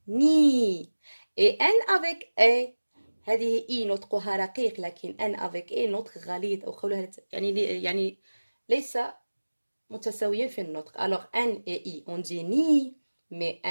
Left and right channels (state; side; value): inverted; both; correlation -1.00